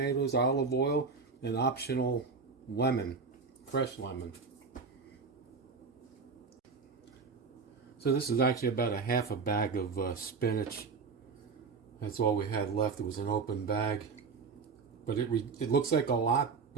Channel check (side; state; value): left; quieter; 4.9 dB